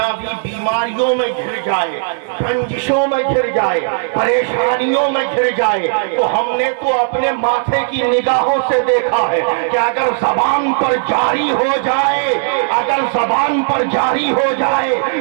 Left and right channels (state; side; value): silent; left; 67 dB below the other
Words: بیماریوں میں گھر جائے، رنجشوں میں گھر جائے، پریشانیوں میں گھر جائے، تو ہم نے تو اپنے ماتھے کی نگاہوں سے دیکھا ہے کہ اگر زبان پر جاری ہو جائے، اگر زبان پر جاری ہو جائے